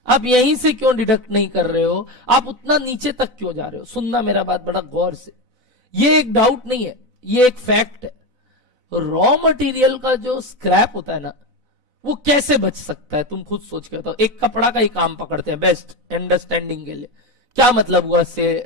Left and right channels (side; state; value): left; late; 4.0 ms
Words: आप यहीं से क्यों डिडक्ट नहीं कर रहे हो, आप उतना नीचे तक क्यों जा रहे हो? सुनना मेरा बात बड़ा गौर से, ये एक डाउट नहीं है, ये एक फैक्ट है। रॉ मटेरियल का जो स्क्रैप होता है ना, वो कैसे बच सकता है? तुम खुद सोच के बताओ। एक कपड़ा का ही काम पकड़ते हैं बेस्ट अंडरस्टैंडिंग के लिए, क्या मतलब हुआ से